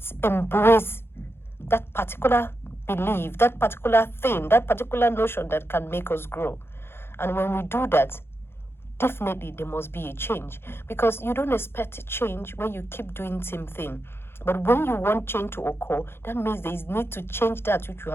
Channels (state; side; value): late; right; 0.11 ms